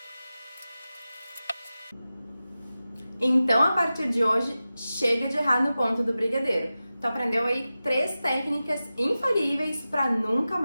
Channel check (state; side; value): inverted; both; correlation -0.94